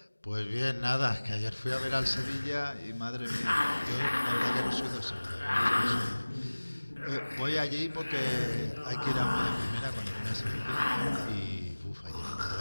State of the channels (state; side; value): inverted; both; correlation -1.00